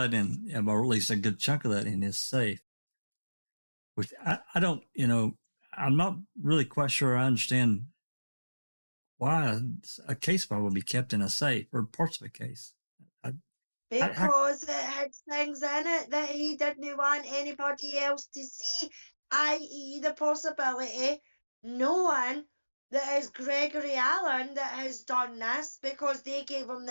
in, or at least a good chunk of that in his safe, which I don't, I'm not really quite sure I understand why a case file would be kept in a safe or parts of a case. Because it had things in it that he didn't want anybody else to see, i.e. the possibility no one that is Gregory Allen that has done this, because they gave him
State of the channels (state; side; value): inverted; both; correlation -1.00